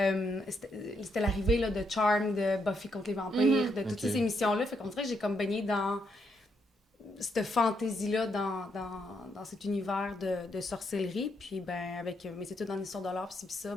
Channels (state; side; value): normal; both; correlation 0.77